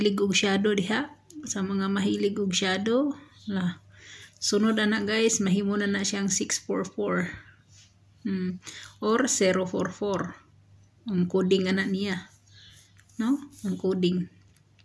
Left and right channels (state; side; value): identical; both; correlation 1.00